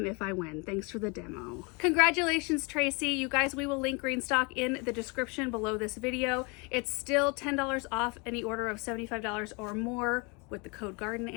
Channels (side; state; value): right; quieter; 30.4 dB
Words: if I win. Thanks for the demo. Congratulations, Tracy. You guys, we will link Greenstock in the description below this video. It's still $10 off any order of $75 or more with the code Garden